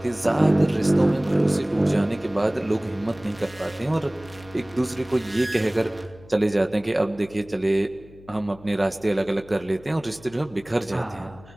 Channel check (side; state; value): left; noise; hum, 22 dB below the sound